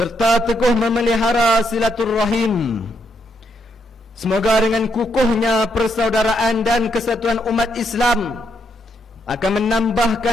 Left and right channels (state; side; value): normal; both; correlation 0.77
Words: teguh memelihara silaturrahim. Semoga dengan kukuhnya persaudaraan dan kesatuan umat Islam akan